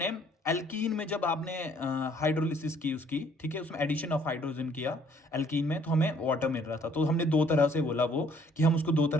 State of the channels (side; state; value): both; normal; correlation 0.61